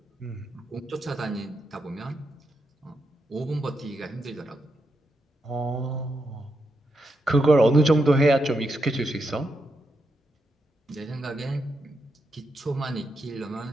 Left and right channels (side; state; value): both; normal; correlation 0.83